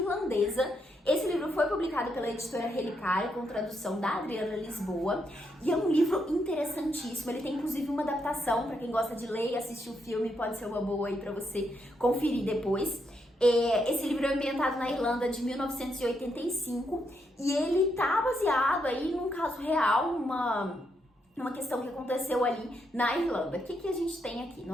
Esse livro foi publicado pela editora Relicária, com tradução da Adriana Lisboa, e é um livro interessantíssimo. Ele tem inclusive uma adaptação, para quem gosta de ler e assistir o filme, pode ser uma boa aí para você conferir depois. Esse livro é ambientado na Irlanda de 1985 e ele tá baseado aí num caso real, numa questão que aconteceu ali na Irlanda. O que a gente tem aqui?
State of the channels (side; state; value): both; normal; correlation 0.79